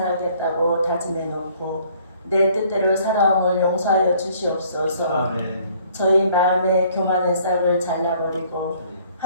다짐해 놓고 내 뜻대로 살아옴을 용서하여 주시옵소서. 아멘. 저희 마음의 교만의 싹을 잘라버리고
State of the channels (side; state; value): both; inverted; correlation -0.59